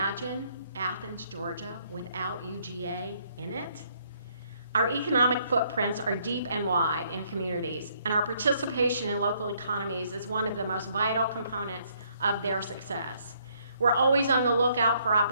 Athens, Georgia, without UGA in it? Our economic footprints are deep and wide in communities, and our participation in local economies is one of the most vital components of their success. We're always on the lookout for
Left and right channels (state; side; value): inverted; both; correlation -0.68